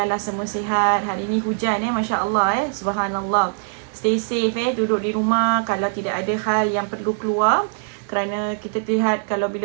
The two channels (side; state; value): left; silent; digital silence